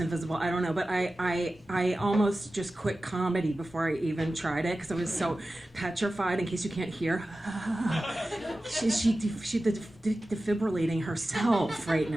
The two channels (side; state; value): both; normal; correlation 0.95